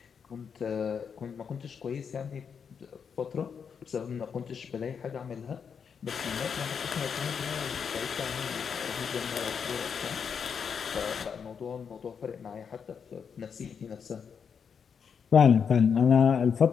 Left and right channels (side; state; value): right; quieter; 6.7 dB